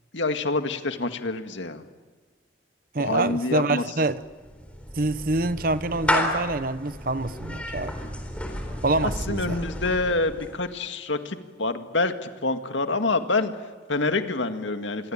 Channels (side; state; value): both; normal; correlation 0.06